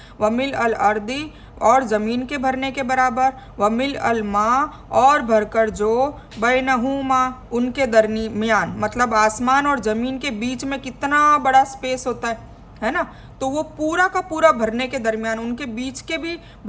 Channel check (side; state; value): both; identical; correlation 1.00